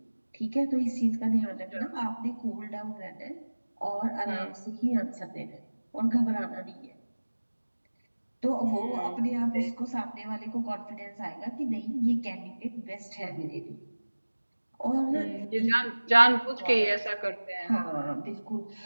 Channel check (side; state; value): both; inverted; correlation -1.00